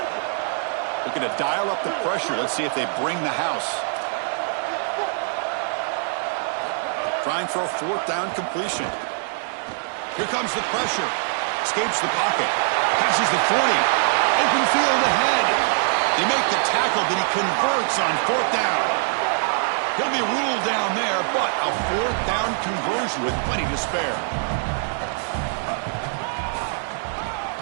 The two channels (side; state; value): left; silent; 59 dB below the other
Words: Looking to dial up the pressure. Let's see if they bring the house. Trying for a fourth down completion. Here comes the pressure. Escapes the pocket. Passes the 40. Open field ahead. They make the tackle, but he converts on fourth down. He'll be ruled down there, but a fourth down conversion with plenty to spare.